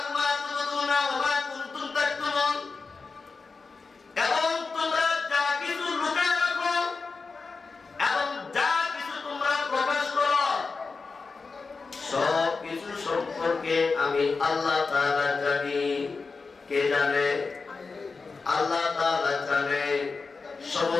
এবং তোমরা যা কিছু লুকায় রাখো আমি আল্লাহ তাআলা জানি। কে জানে? আল্লাহ তাআলা জানে।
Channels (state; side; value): quieter; right; 4.4 dB